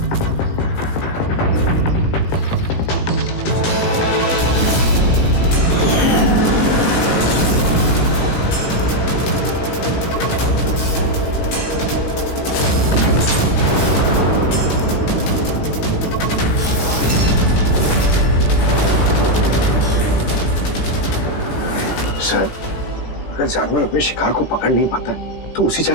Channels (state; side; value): late; right; 17 ms